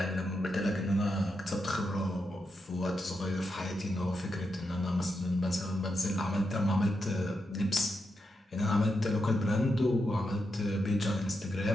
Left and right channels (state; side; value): normal; both; correlation 0.85